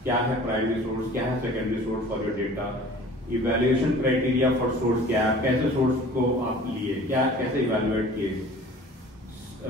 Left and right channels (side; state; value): both; normal; correlation 0.46